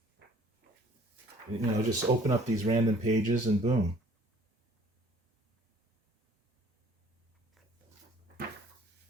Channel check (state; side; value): normal; both; correlation 0.55